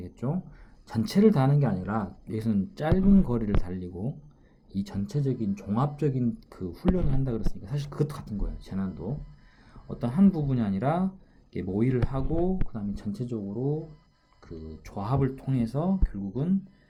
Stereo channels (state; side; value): identical; both; correlation 1.00